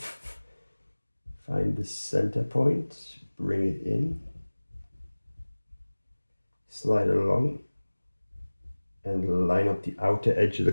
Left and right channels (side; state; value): both; inverted; correlation -1.00